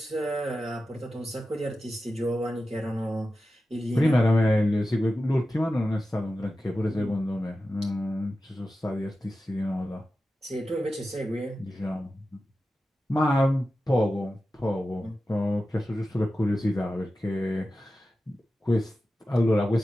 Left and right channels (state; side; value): normal; both; correlation 0.93